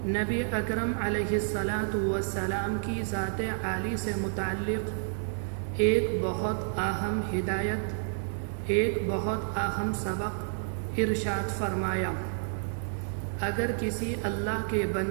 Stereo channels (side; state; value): left; silent; 58 dB below the other